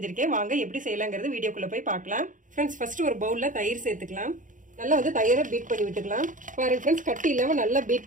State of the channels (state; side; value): late; left; 0.38 ms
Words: வாங்க எப்படி செய்யலாங்கிறது வீடியோக்குள்ள போய் பார்க்கலாம். ஃப்ரெண்ட்ஸ், ஃபர்ஸ்ட் ஒரு பவுல்ல தயிர் சேர்த்துக்கலாம். நல்லா தயிரை பீட் பண்ணி விட்டுக்கலாம். பாருங்க ஃப்ரெண்ட்ஸ், கட்டி இல்லாம நல்லா பீட்